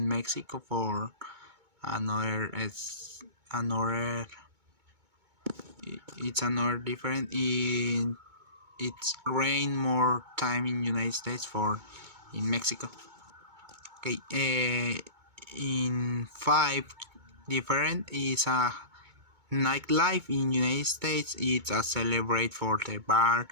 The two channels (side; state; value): left; late; 2.2 ms